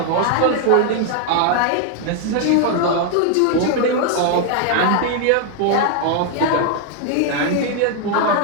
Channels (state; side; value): different; both; correlation 0.00